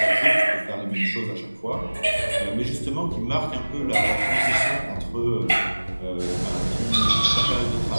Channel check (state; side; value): inverted; both; correlation -1.00